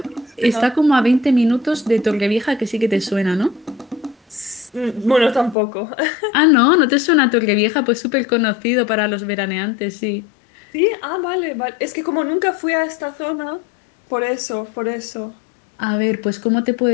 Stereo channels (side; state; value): right; drops out; at 5.6 s